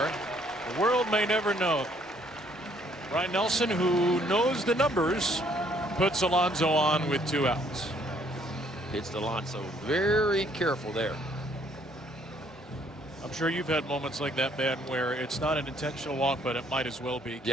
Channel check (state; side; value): normal; both; correlation 0.65